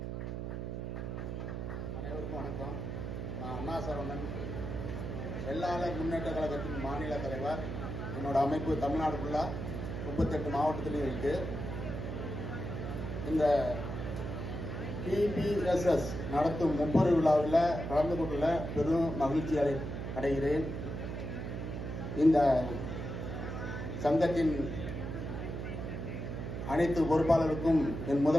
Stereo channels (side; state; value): right; noise; hum, 5 dB below the sound